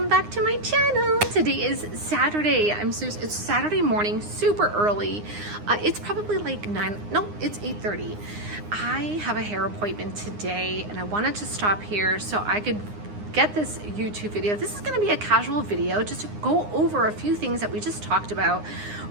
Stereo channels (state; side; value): late; left; 9.7 ms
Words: back to my channel. Today is Saturday. It's Saturday morning, super early. It's probably like it's 8:30. I have a hair appointment today and I wanted to stop here so I could get this YouTube video. This is going to be a casual video just to go over a few things that we just talked about